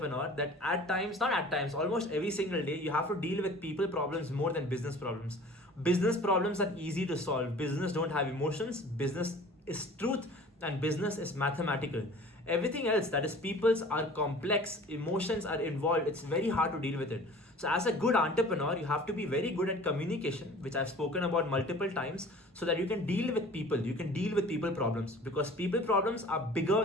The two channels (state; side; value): normal; both; correlation 0.45